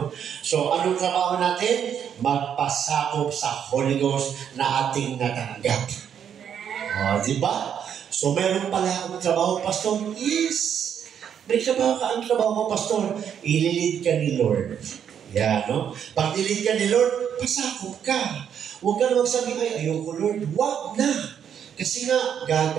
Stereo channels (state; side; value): quieter; left; 8.5 dB